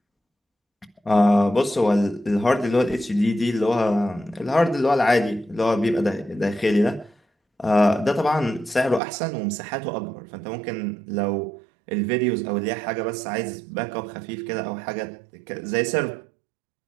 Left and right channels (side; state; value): left; drops out; at 9.0 s